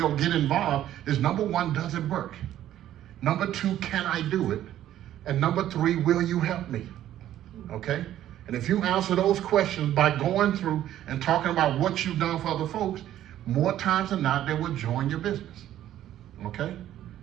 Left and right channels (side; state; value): left; quieter; 12.2 dB